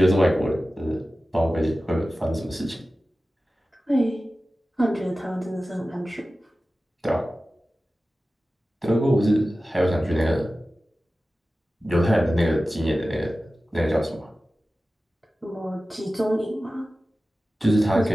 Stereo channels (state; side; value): normal; both; correlation 0.95